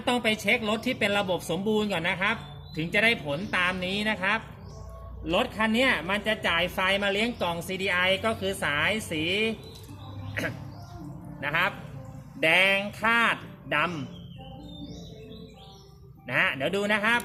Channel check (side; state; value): both; identical; correlation 1.00